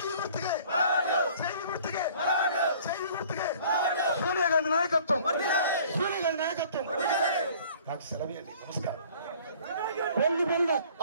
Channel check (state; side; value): inverted; both; correlation -0.52